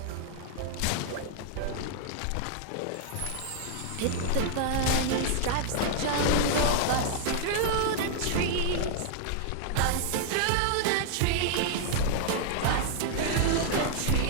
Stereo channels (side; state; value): both; different; correlation 0.00